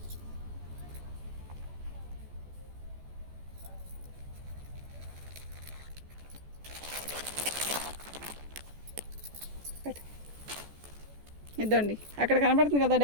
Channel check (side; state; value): left; late; 14 ms